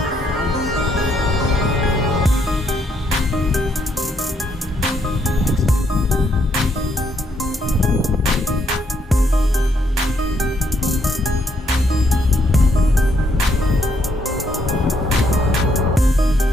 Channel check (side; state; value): both; normal; correlation 0.73